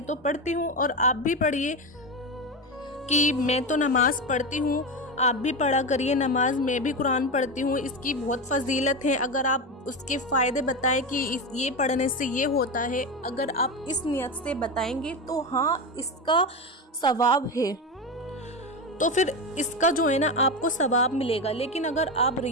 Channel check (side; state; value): both; normal; correlation 0.18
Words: तो पढ़ती हूँ और आप भी पढ़िए, कि मैं तो नमाज पढ़ती हूँ, आप भी पढ़ा करिए नमाज, मैं भी कुरान पढ़ती हूँ, इसकी बहुत फजीलत है। अगर आप उसके फ़ायदे बताएं कि ये पढ़ने से ये होता है, अगर आप इस नियत से बताएंगे तो हाँ इसका सवाब है, तो फिर इसका जो है ना आपको सवाब मिलेगा। लेकिन अगर आप